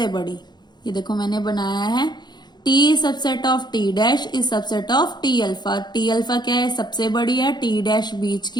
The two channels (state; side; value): late; right; 0.21 ms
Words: बड़ी। ये देखो मैंने बनाया है T subset of T dash is subset of T alpha. T alpha क्या है, सबसे बड़ी है, टी डैश बीच